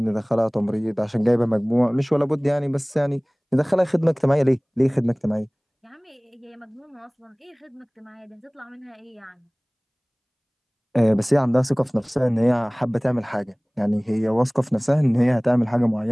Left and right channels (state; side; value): identical; both; correlation 1.00